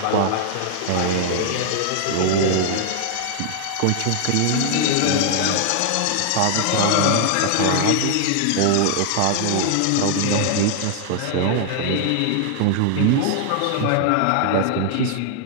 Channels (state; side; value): different; both; correlation 0.00